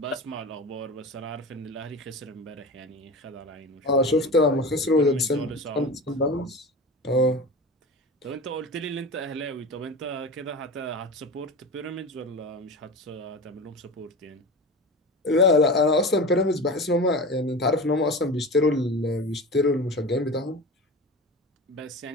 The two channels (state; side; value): normal; both; correlation 0.31